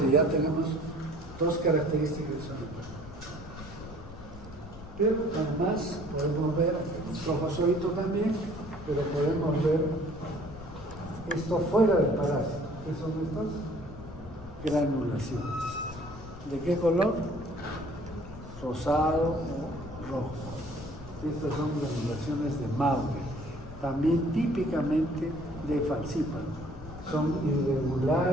ya tenemos dos características de salud. Pero además podemos ver trofozoito también, pero podemos ver esto fuera del parásito. ¿Qué son estas? Granulaciones. ¿De qué color? Rosado o rojo. Estas son granulaciones de Maury, también típicamente de falciparum. Son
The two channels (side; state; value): left; noise; rumble, 15 dB below the sound